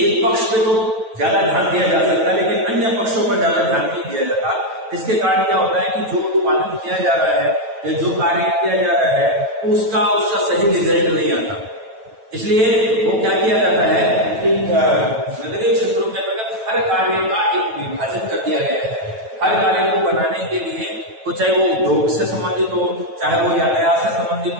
एक पक्ष पे तो ज्यादा ध्यान दिया जा सकता है लेकिन अन्य पक्षों पर ज्यादा ध्यान नहीं दिया जाता। इसके कारण क्या होता है कि जो उत्पादन किया जा रहा है या जो कार्य किया जा रहा है उसका सही रिजल्ट नहीं आता। इसलिए वो क्या किया जाता है कि नगरीय क्षेत्रों के अंतर्गत हर कार्य का एक विभाजन कर दिया गया है। हर कार्य को बनाने के लिए, चाहे वो उद्योग से संबंधित हो, चाहे वो यातायात से संबंधित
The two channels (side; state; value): left; late; 9.1 ms